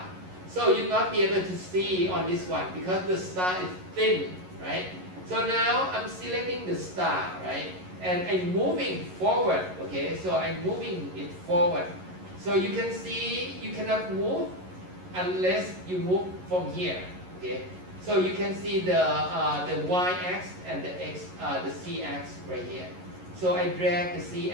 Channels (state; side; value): late; left; 11 ms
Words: So you'll not be able to see on this one because the star is thin, right? So now I'm selecting the star, right? And I'm moving forward, okay? So I'm moving it forward. So you can see you cannot move unless you move from here, okay? So you can see the y-axis and the z-axis right here. So I drag the